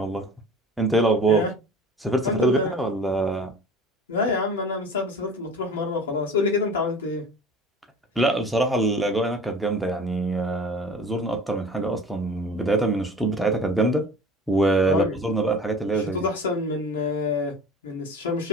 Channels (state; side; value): normal; both; correlation 0.41